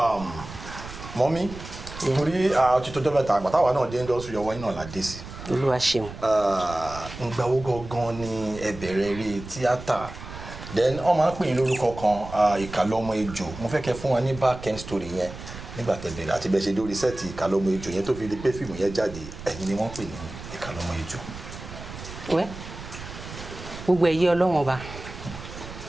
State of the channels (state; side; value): noise; right; rumble, 13 dB below the sound